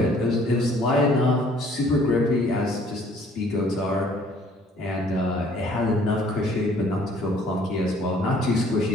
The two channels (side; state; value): both; normal; correlation 0.58